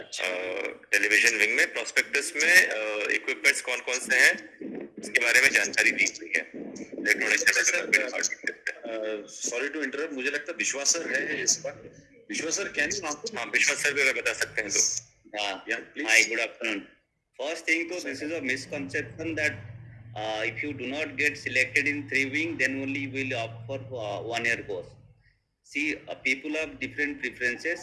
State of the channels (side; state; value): both; identical; correlation 1.00